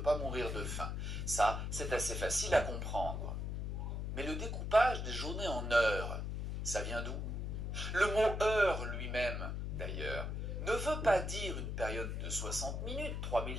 pas mourir de faim. Ça, c'est assez facile à comprendre. Mais le découpage des journées en heures, ça vient d'où? Le mot heure lui-même, d'ailleurs, ne veut pas dire une période de 60 minutes,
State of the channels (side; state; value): left; noise; hum, 3 dB below the sound